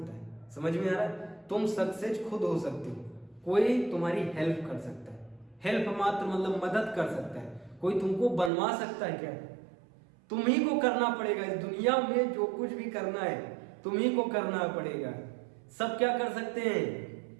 है। समझ में आ रहा है? तुम सक्सेस खुद हो सकते हो, कोई तुम्हारी हेल्प कर सकता है, हेल्प मात्र मतलब मदद कर सकता है, कोई तुमको बनवा सकता है क्या? तुम ही को करना पड़ेगा। इस दुनिया में जो कुछ भी करना है तुम ही को करना पड़ेगा। सब क्या कर सकते हैं?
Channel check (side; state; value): left; drops out; at 8.5 s